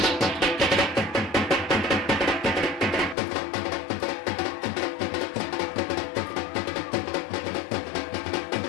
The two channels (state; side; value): drops out; right; at 3.2 s